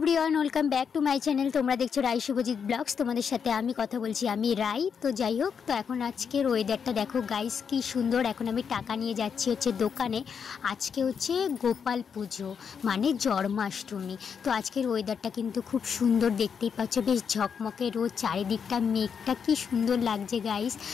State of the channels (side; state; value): right; quieter; 6.8 dB